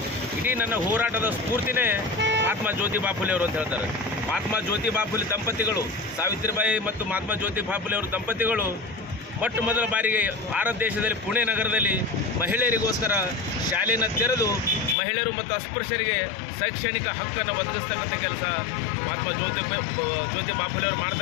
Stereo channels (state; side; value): drops out; right; at 15.0 s